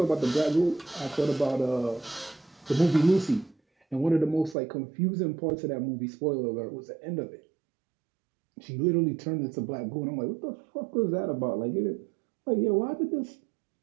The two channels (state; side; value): drops out; left; at 4.5 s